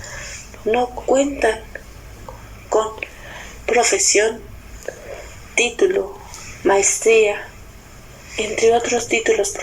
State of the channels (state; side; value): identical; both; correlation 1.00